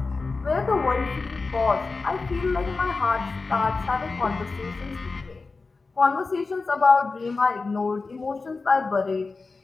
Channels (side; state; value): right; quieter; 4.0 dB